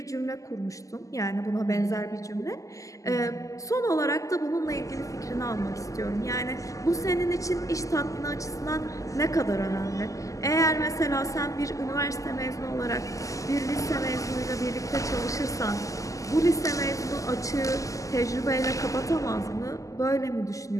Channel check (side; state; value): right; late; 0.16 ms